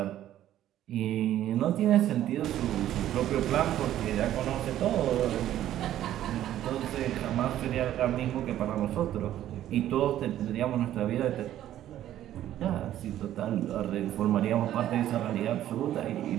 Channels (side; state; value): left; quieter; 12.4 dB